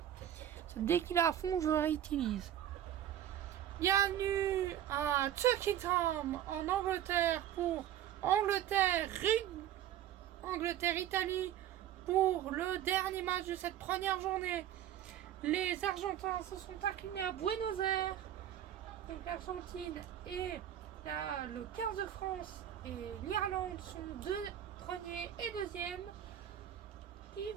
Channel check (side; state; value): left; quieter; 11.2 dB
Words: Dès qu'il est à fond, je le réutilise. Bienvenue à Tuckingham en Angleterre pour Angleterre-Italie pour le dernier match de cette première journée. Les Argentins se sont inclinés à Buenos Aires. Donc l'Argentine et le 15 de France et l'Irlande sont deux premiers et deuxièmes. Qui